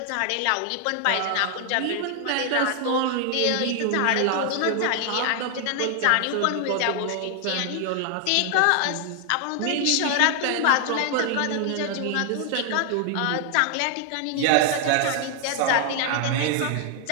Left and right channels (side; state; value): both; different; correlation 0.00